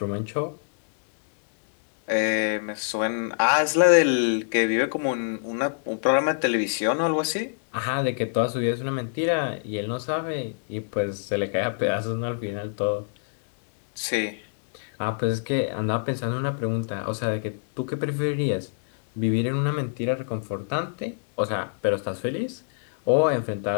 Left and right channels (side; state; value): right; silent; digital silence